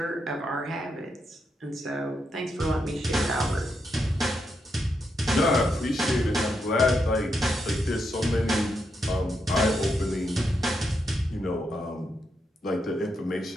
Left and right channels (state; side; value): normal; both; correlation 0.82